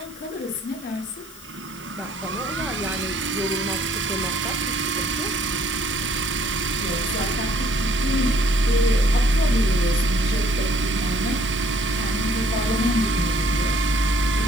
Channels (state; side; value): noise; left; hiss, 20 dB below the sound